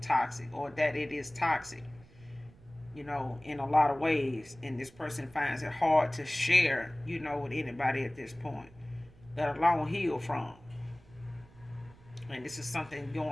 toxic, or that it is toxic, in a lot of ways. And this person finds it hard to share, with anybody at this point, let alone heal from. And this is something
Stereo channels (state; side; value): noise; right; rumble, 24 dB below the sound